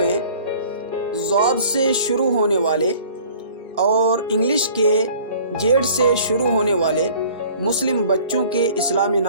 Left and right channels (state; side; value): inverted; both; correlation -0.50